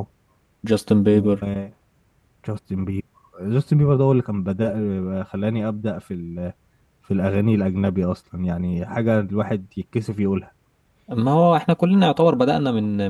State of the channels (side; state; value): both; identical; correlation 1.00